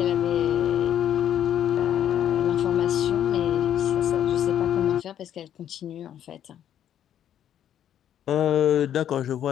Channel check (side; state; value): right; quieter; 10.3 dB